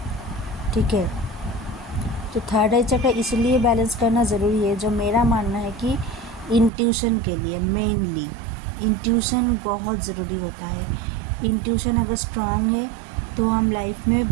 ठीक है, तो थर्ड आई चक्र इसलिए बैलेंस करना ज़रूरी है, जो मेरा मानना है कि इंट्यूशन के लिए, मेनली इंट्यूशन बहुत ज़रूरी होता है। इंट्यूशन अगर स्ट्रांग है तो हम लाइफ में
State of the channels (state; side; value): drops out; left; at 6.7 s